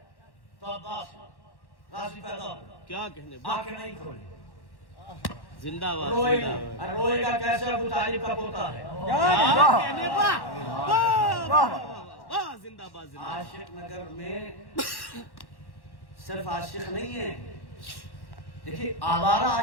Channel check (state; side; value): late; right; 1.1 ms